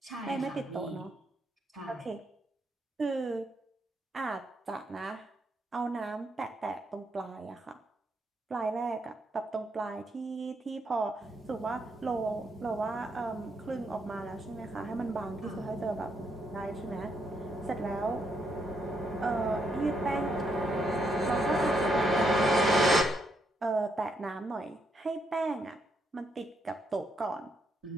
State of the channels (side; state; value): both; normal; correlation 0.77